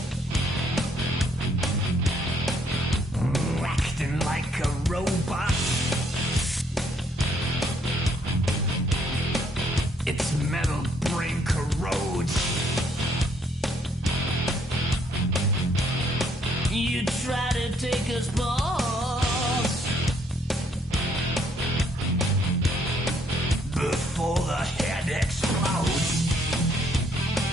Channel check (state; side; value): normal; both; correlation 0.68